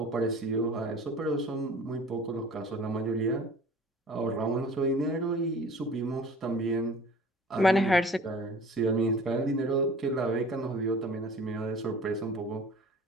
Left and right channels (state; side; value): normal; both; correlation 0.45